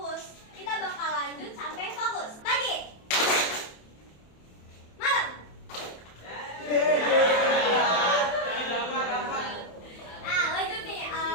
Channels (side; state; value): right; late; 27 ms